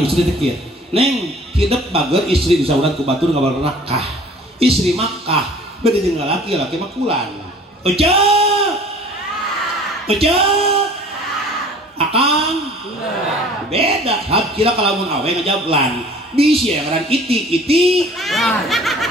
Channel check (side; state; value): both; normal; correlation 0.49